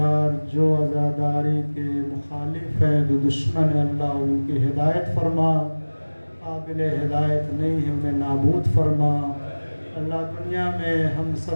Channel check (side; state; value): both; inverted; correlation -1.00